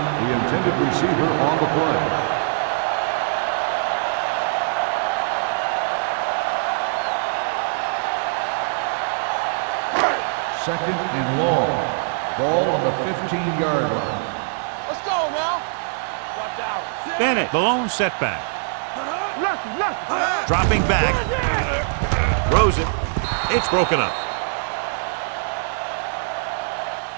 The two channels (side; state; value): left; silent; digital silence